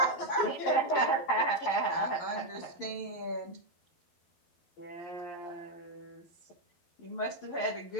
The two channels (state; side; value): late; right; 11 ms